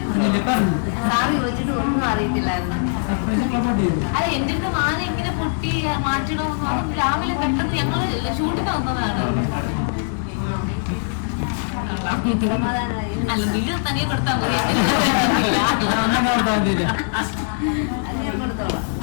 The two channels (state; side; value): silent; right; 65 dB below the other